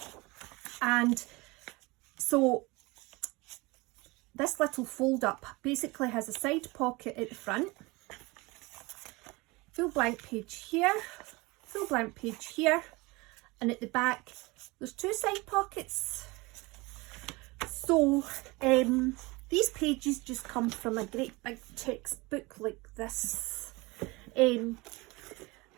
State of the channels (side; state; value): left; quieter; 24.0 dB